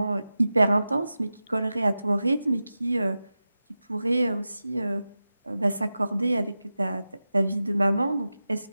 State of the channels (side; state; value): both; inverted; correlation -0.93